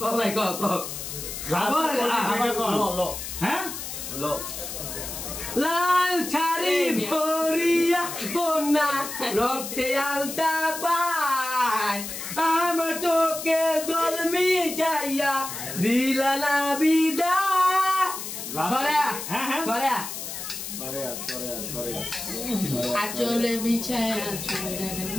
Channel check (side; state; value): left; noise; hiss, 7 dB below the sound